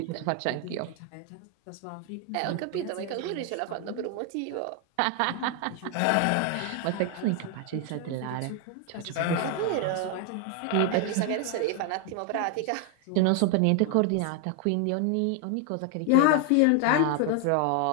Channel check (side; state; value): both; different; correlation 0.01